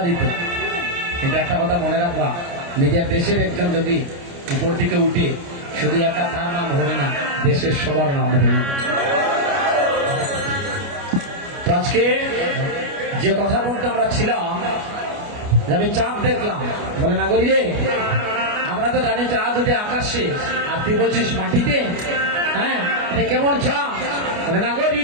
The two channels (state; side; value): late; left; 29 ms